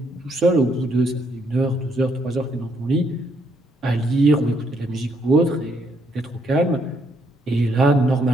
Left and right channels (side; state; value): both; normal; correlation 0.72